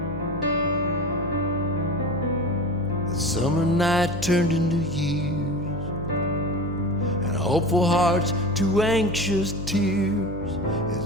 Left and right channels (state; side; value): noise; left; hum, 14 dB below the sound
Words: The summer night turned into years, and hopeful hearts to anxious tears,